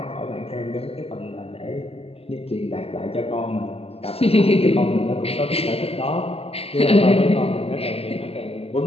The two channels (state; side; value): late; right; 0.29 ms